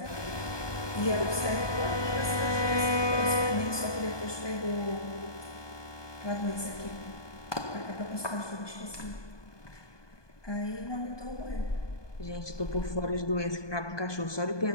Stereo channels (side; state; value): right; late; 1.2 ms